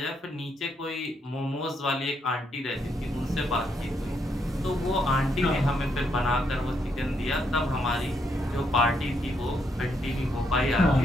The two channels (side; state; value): both; normal; correlation 0.76